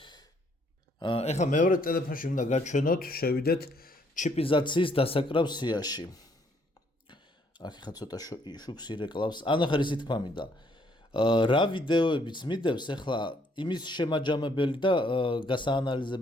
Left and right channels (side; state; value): both; normal; correlation 0.67